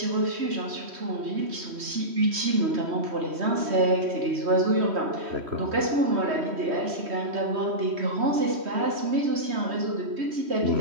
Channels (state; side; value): late; left; 3.1 ms